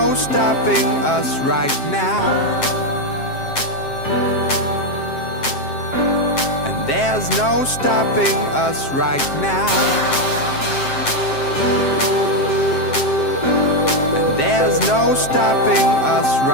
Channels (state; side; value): late; right; 7.6 ms